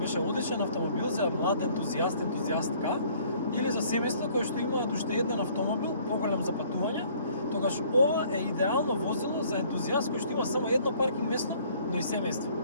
одличен автомобил за млад ентузијаст, ентузијастка, или за семејство кои што имаат уште еден автомобил, поголем за патување, тогаш ова е идеално возило за ентузијаст кој што има само едно паркинг место, но и семејство.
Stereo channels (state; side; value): inverted; both; correlation -0.58